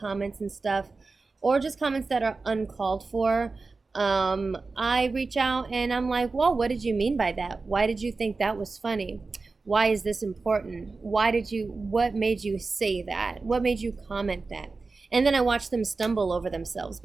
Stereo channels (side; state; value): left; quieter; 4.0 dB